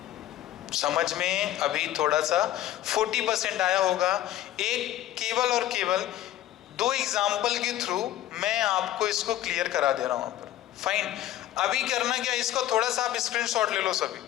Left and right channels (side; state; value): right; quieter; 13.5 dB